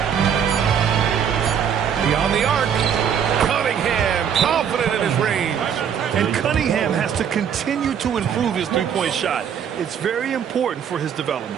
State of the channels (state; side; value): quieter; left; 8.1 dB